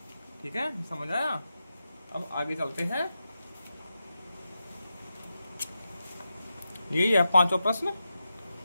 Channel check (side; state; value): both; inverted; correlation -0.89